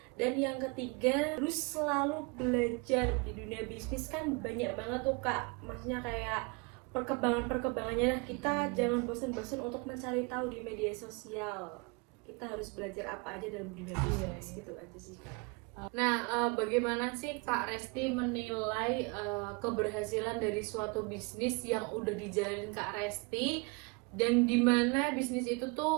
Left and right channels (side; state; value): left; quieter; 29.5 dB